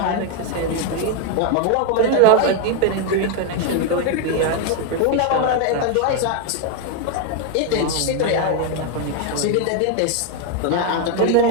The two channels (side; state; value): both; different; correlation 0.01